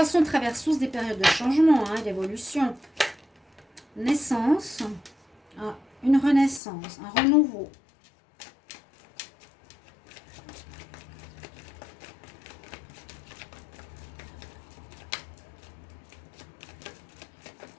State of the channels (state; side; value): drops out; right; at 6.6 s